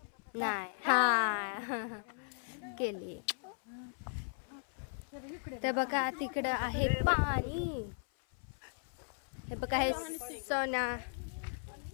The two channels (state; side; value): silent; right; 53 dB below the other